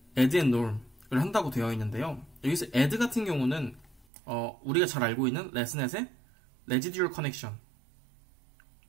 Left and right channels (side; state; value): left; drops out; at 4.0 s